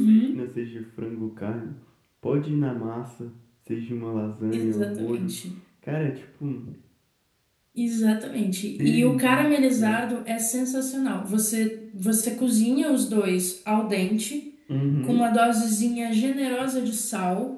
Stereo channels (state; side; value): identical; both; correlation 1.00